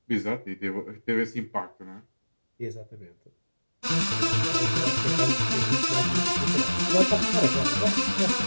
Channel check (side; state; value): both; inverted; correlation -1.00